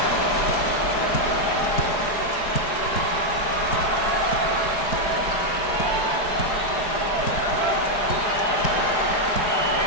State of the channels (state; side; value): late; right; 4.9 ms